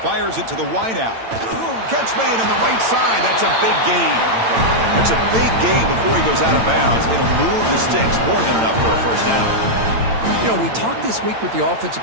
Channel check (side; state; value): left; late; 8.9 ms